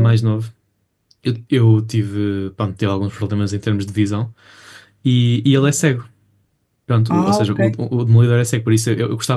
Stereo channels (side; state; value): both; identical; correlation 1.00